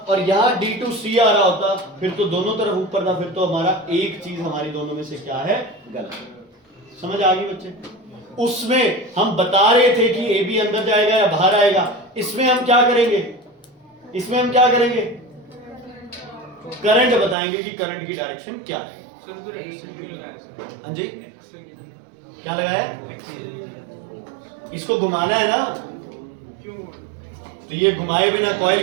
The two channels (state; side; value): drops out; left; at 17.4 s